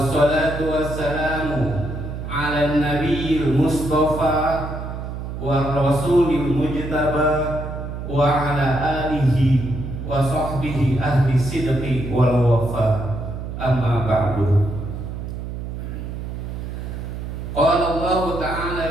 wassalamu 'ala nabiyil mustafa wa rasulil mujtaba wa 'ala alihi wa sahbihi ahli sidqi wal wafa. Amma ba'du. Qala Allah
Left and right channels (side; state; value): right; noise; hum, 7 dB below the sound